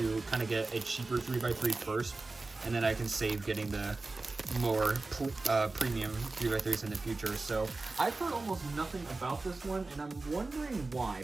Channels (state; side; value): quieter; left; 3.4 dB